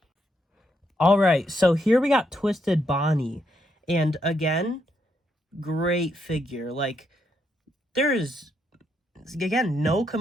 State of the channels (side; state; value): both; normal; correlation 0.78